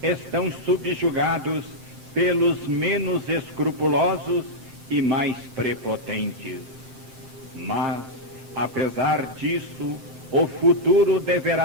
estão subjugados pelos menos escrupulosos e mais prepotentes. Mas, apesar disso, o futuro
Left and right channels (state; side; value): late; left; 7.6 ms